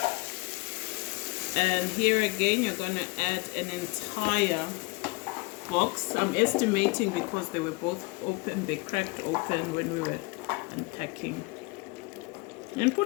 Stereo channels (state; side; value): quieter; right; 26.3 dB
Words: And here again, you're going to add an entire box. I'm estimating because they were both open, they cracked open when we were unpacking. And